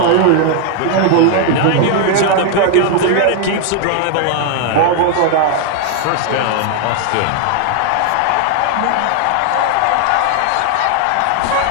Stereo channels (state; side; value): different; both; correlation 0.00